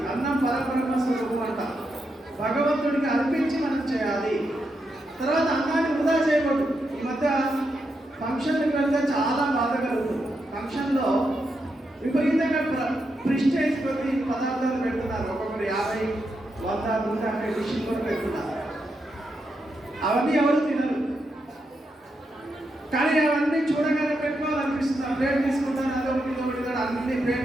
అన్నం పరబ్రహ్మ స్వరూపం అంట, భగవంతుడికి అర్పించి మనం చేయాలి. తర్వాత అన్నాన్ని వృధా చేయకూడదు. ఈ మధ్య ఫంక్షన్కి వెళ్తే చాలా బాధ కలుగుతుంది. ఫంక్షన్లో విపరీతంగా ప్రిస్టేజ్ కొద్ది పదార్థాలు పెడుతున్నారు. ఒక్కొక్కరు 50, 100, 150 డిష్లు కూడా పెడుతున్నారు. అవన్నీ ఎవరు తినరు, కానీ అవన్నీ చూడగానే పెట్టుకోవాలనిపిస్తుంది. ప్లేట్ తీసుకుంటాను, అదొకటి ఇదొకటి కూడా అన్ని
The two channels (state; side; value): normal; both; correlation 0.84